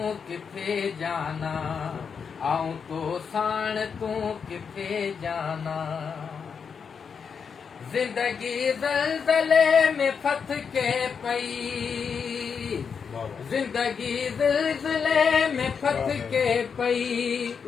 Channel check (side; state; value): right; quieter; 6.3 dB